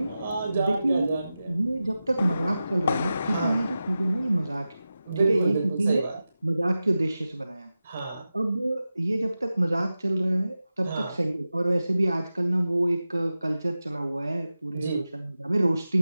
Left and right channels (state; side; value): inverted; both; correlation -0.93